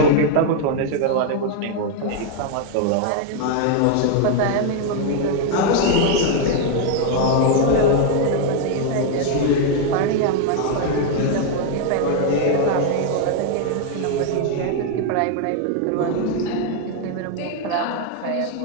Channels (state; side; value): different; both; correlation 0.00